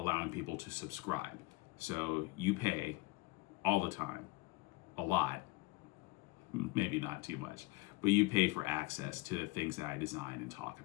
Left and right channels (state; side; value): quieter; right; 22.0 dB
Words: people to subscribe. So you pay all the time, a lot, maybe not too much, but you pay for access to the things that I design and talk